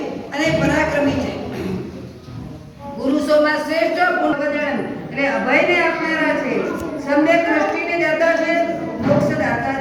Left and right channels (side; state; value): both; identical; correlation 1.00